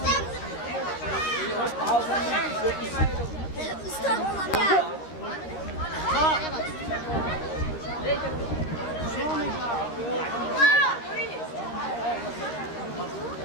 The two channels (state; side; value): late; right; 13 ms